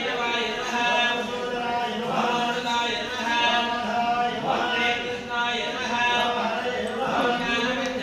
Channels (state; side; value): identical; both; correlation 1.00